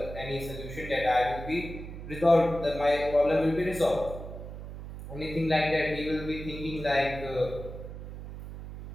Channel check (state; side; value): noise; right; hum, 10 dB below the sound